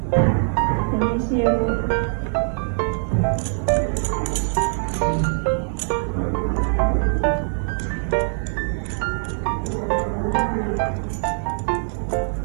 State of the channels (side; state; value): left; silent; 64 dB below the other